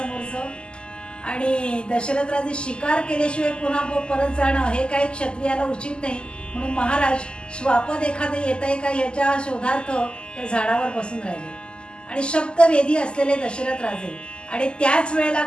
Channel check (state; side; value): late; right; 0.049 ms